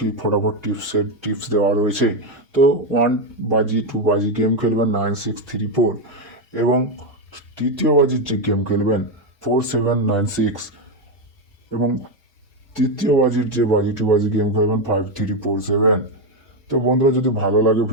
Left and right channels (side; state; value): both; normal; correlation 0.07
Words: ফটাফট টিপস দেওয়া রয়েছে। তো 1 বাজি 2 বাজি গেম খেলবেন 9634, এবং তৃতীয় বাজির যে গেম খেলবেন 4796, এবং তৃতীয় বাজির যে বাজি 2 বাজি গেম খেলবেন 5347। তো বন্ধুরা, যদি ভালো লাগে